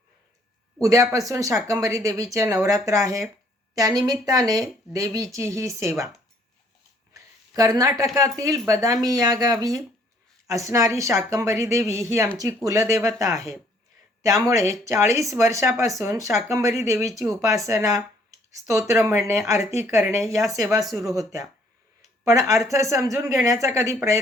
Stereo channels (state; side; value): normal; both; correlation 0.63